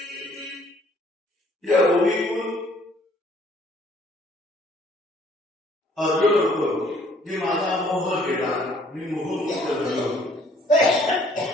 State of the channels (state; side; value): normal; both; correlation 0.60